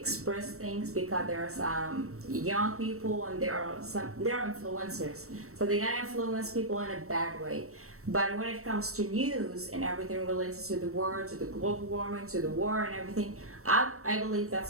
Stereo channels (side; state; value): left; late; 0.63 ms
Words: things, because there are some young people and there are influencers, so they can influence people in a bad way. But when it comes to news and everything related to the world, to the global warming, to the war and everything, I believe that's